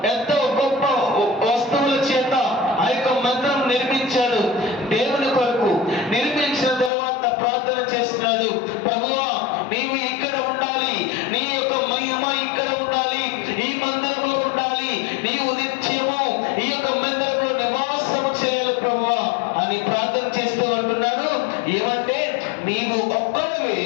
ఎంతో గొప్ప వస్తువుల చేత ఆ యొక్క మందిరం నిర్మించాడు. దేవుని కొరకు నిర్మించిన తర్వాత ప్రార్థన చేస్తున్నాడు. ప్రభువా నీవు ఇక్కడ ఉండాలి, నీ యొక్క మహిమ ఇక్కడ ఉండాలి, ఈ మందిరంలో ఉండాలి, నీవు నిత్యము ఈ యొక్క మందిరంలో నివాసము చేయాలి ప్రభువా అని ప్రార్థన చేస్తూ అంటున్నాడు. ఏమంటే నీవు ఒక్కడివే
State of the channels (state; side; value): drops out; right; at 6.9 s